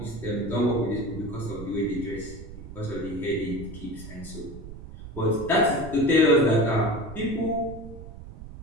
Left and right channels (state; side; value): noise; right; rumble, 13 dB below the sound